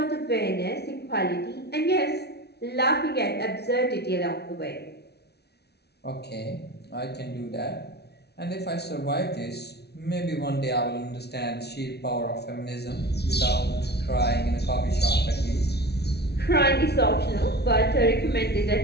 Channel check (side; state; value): right; late; 0.48 ms